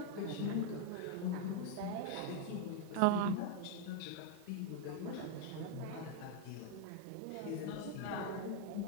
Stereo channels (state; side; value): different; both; correlation 0.00